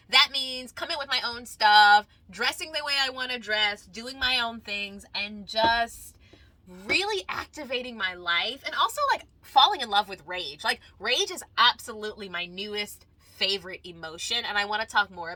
that means coming with my own stuff, dressing the way I want to dress, doing my own things, and just really activating my life, and also like falling in love with rage. Like, rage is absolutely my newest favorite emotion, and I want to talk more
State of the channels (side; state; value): both; identical; correlation 1.00